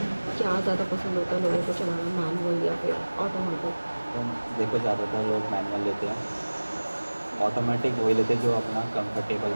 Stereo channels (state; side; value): inverted; both; correlation -1.00